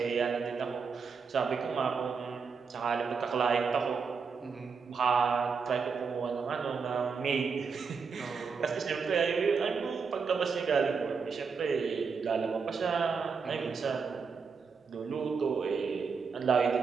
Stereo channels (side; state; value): left; quieter; 5.5 dB